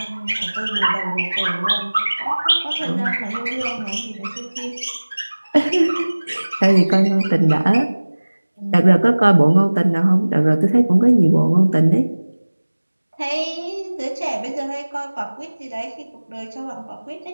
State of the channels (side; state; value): both; inverted; correlation -1.00